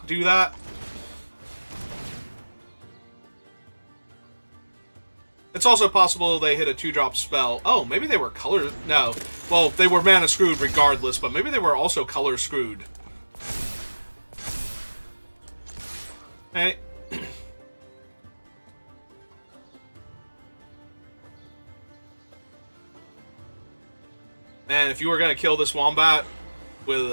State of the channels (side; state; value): both; inverted; correlation -1.00